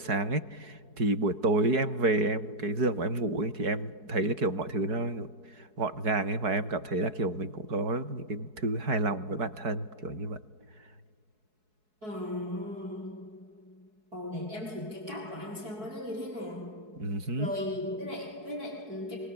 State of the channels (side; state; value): left; late; 4.7 ms